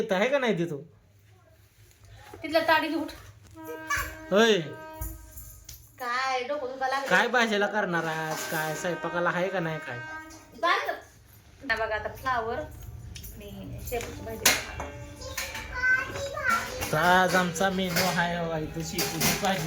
आहे का नाही तिथं? तिथल्या ताडी घेऊन होय काय डोकं तुला लागलं काय भाजीला करणार आहात? काय स्वयंपाकाला आहे का नाही काय? बघा आता फ्लावर आणि शेपूची भाजी तर आज आमचा मेनू आहे बघा इथं शेपूची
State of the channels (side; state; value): both; identical; correlation 1.00